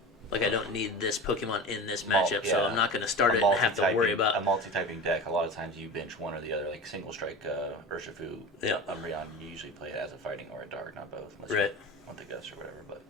like I don't need this Pokemon in this Mul- matchup, so yeah. I'm not going to start a it and have to worry multi-typing- a about. multi-typing deck. A lot of times you bench one or the other, like single strike Urshifu, Yeah. Umbreon. You usually play it as a fighting or a dark, not both. Unless Right. you want the Gus or whatever,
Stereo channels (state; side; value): normal; both; correlation 0.31